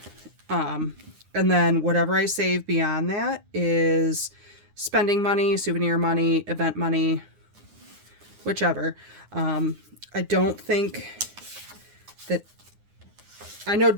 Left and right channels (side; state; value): left; late; 9.7 ms